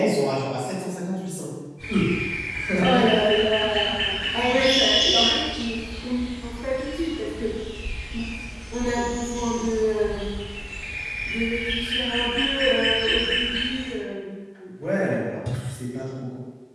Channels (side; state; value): both; identical; correlation 1.00